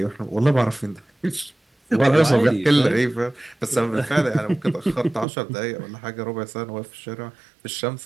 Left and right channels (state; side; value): drops out; left; at 5.2 s